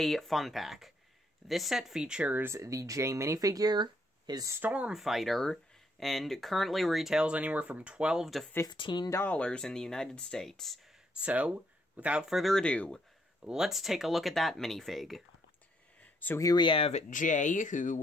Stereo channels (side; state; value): both; normal; correlation 0.72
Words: Fun Pack. This set features the J minifigure, his Stormfighter, and currently retails anywhere from $12 to $15 in the United States. So, without further ado, let's take a look at that minifig. So here we have Jay,